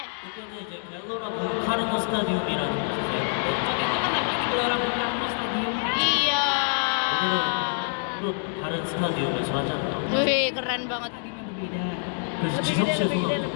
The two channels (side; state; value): right; silent; digital silence